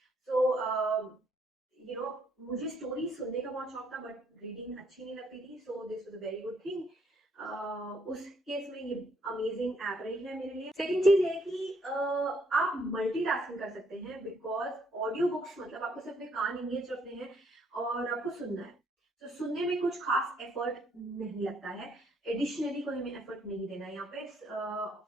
So मुझे स्टोरी सुनने का बहुत शौक था बट रीडिंग अच्छी नहीं लगती थी। So this was a very good thing. उस केस में ये अमेजिंग ऐप रही है मेरे लिए। सेकंड चीज है कि आप मल्टीटास्किंग कर सकते हैं बिकॉज ऑडियो बुक्स मतलब आपको सिर्फ अपने कान इंगेज रखने हैं और आपको सुनना है। तो सुनने में कुछ खास एफर्ट नहीं लगता है, एडिशनली कोई हमें एफर्ट नहीं देना है यहाँ पे।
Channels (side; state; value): both; normal; correlation 0.69